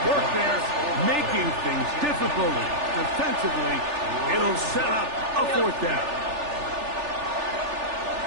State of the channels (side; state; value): left; late; 3.4 ms